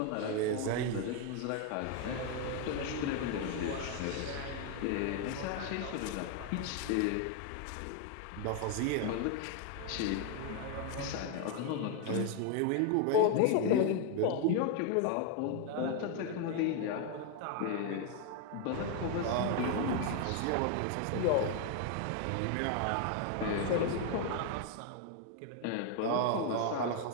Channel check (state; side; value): different; both; correlation 0.01